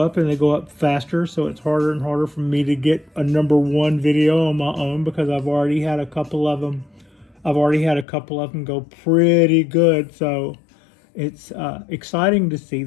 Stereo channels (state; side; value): drops out; right; at 8.1 s